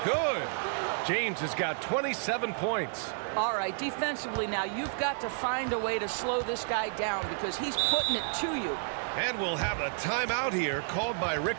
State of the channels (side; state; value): left; silent; digital silence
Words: good. James has got 27 points. All right, defensively now, you've got to find a way to slow this guy down because he's putting it to you. And we'll have a timeout here called by